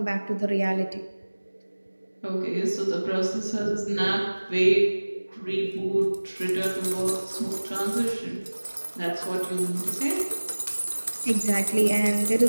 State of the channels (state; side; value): inverted; both; correlation -1.00